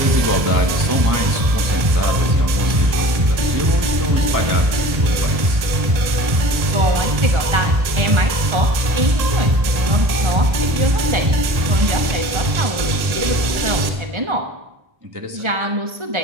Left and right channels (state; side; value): late; left; 1.8 ms